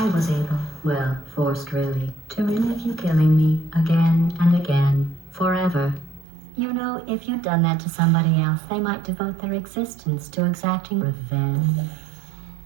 was able, well, forced really, to relive you killing me again and again, forever. You know, if you'd done that to somebody else, they might devote their existence to exacting revenge.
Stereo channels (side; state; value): left; drops out; at 6.2 s